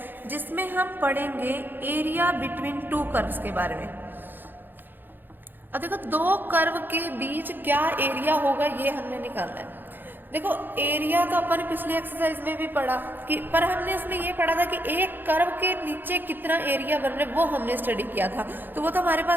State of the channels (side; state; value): left; late; 0.093 ms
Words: जिसमें हम पढ़ेंगे एरिया बिटवीन टू कर्व्स के बारे में। अब देखो दो कर्व के बीच क्या एरिया होगा ये हमने निकालना है। देखो एरिया तो अपन पिछली एक्सरसाइज में भी पढ़ा कि, पर हमने इसमें ये पढ़ा था कि एक कर्व के नीचे कितना एरिया बन रहा है, वो हमने स्टडी किया था। तो वो तो हमारे